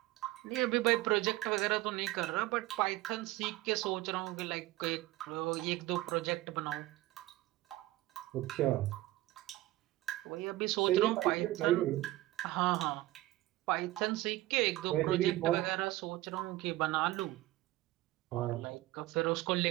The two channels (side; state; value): left; quieter; 17.4 dB